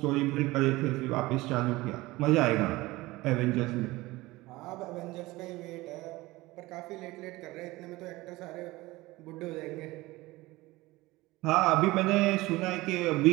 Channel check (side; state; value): left; quieter; 19.9 dB